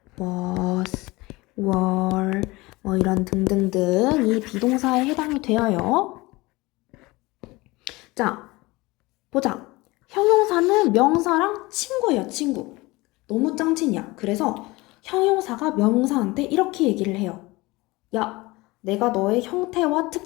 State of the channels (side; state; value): right; quieter; 21.9 dB